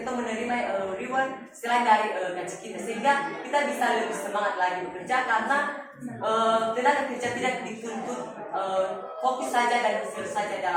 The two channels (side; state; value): both; identical; correlation 1.00